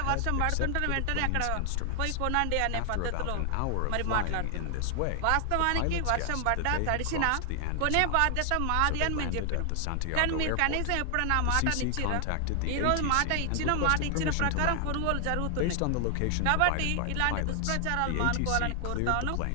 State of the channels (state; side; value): different; both; correlation 0.00